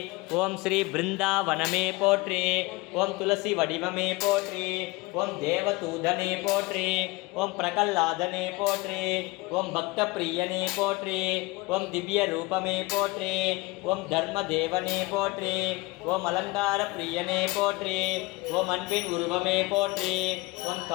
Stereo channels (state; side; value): quieter; right; 23.3 dB